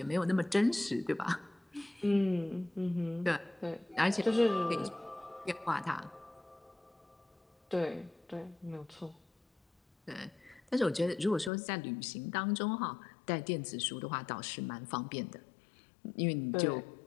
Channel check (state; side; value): drops out; right; at 11.5 s